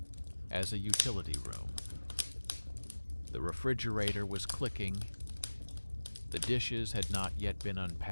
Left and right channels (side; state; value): both; inverted; correlation -1.00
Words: as a utility room. The refrigerator was clicking. The dishes had not yet been